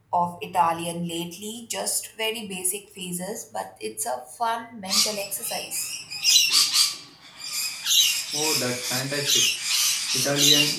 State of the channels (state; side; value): identical; both; correlation 1.00